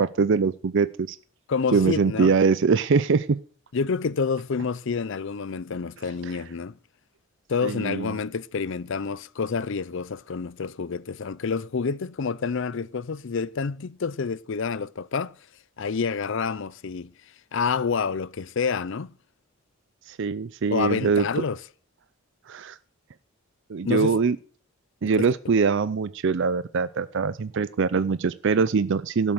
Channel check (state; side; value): normal; both; correlation 0.02